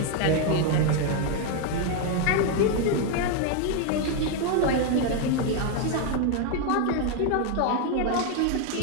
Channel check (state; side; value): different; both; correlation 0.01